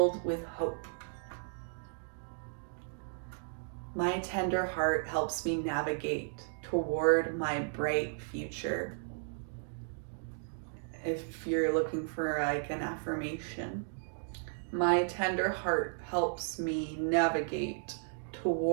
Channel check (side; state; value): left; silent; digital silence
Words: with hope. My tender heart helps me navigate toward my bright future. If you're looking for like an affirmation, my tender heart helps me navigate